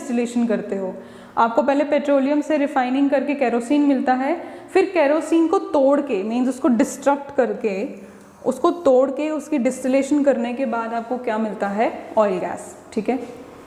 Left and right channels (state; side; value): identical; both; correlation 1.00